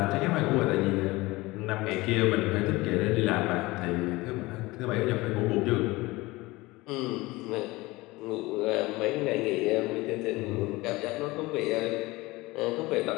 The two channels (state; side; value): quieter; right; 21.1 dB